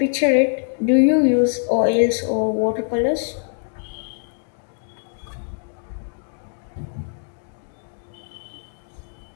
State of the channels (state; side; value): silent; right; digital silence